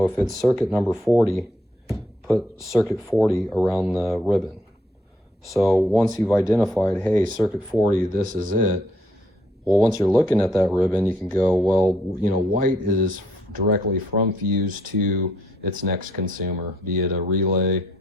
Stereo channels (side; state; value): both; normal; correlation 0.70